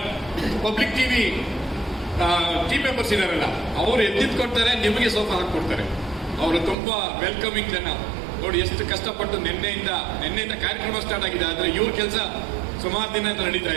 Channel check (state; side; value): drops out; left; at 6.8 s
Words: ಪಬ್ಲಿಕ್ ಟಿವಿ ಟೀಮ್ ಮೆಂಬರ್ಸ್ ಇದಾರಲ್ಲ, ಅವರು ಎದ್ದಿದ್ಕೊಡ್ತಾರೆ, ನಿಮಗೆ ಸೋಫಾ ಹಾಕೊಡ್ತಾರೆ. ಅವರು ತುಂಬಾ ವೆಲ್ಕಮಿಂಗ್ ಜನ. ನೋಡಿ ಎಷ್ಟು ಕಷ್ಟಪಟ್ಟು ನಿನ್ನೆಯಿಂದ ಕಾರ್ಯಕ್ರಮ ಸ್ಟಾರ್ಟ್ ಆಗಿದೆ, ಆದ್ರೆ ಇವ್ರ ಕೆಲಸ ಸುಮಾರು ದಿನ ನಡೀತಾ